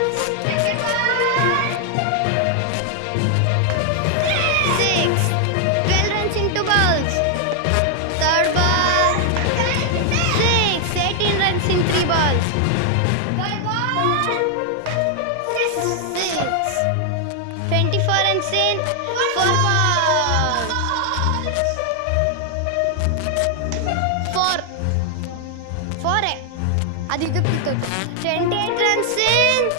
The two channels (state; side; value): different; both; correlation 0.00